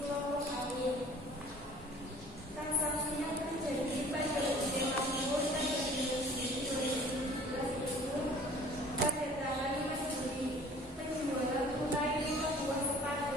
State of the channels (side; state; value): both; normal; correlation 0.50